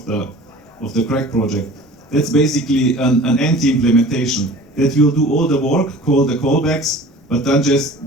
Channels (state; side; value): normal; both; correlation 0.43